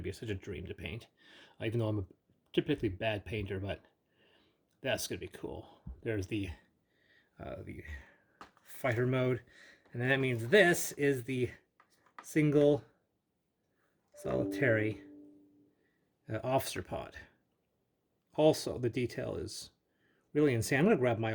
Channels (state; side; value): identical; both; correlation 1.00